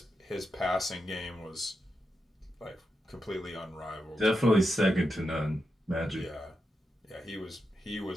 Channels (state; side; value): normal; both; correlation 0.87